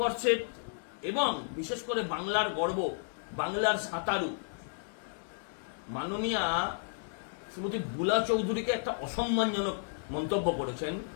এবং বিশেষ করে বাংলার গর্ব, বাংলার সাঁতারু মাননীয়া শ্রীমতী বুলা চৌধুরীকে একটা অসম্মানজনক মন্তব্য করেছেন।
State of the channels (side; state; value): right; silent; 56 dB below the other